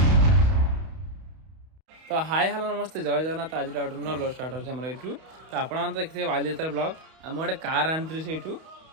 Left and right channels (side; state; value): left; late; 31 ms